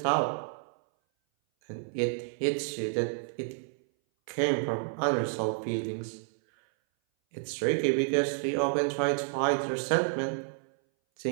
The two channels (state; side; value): silent; left; 58 dB below the other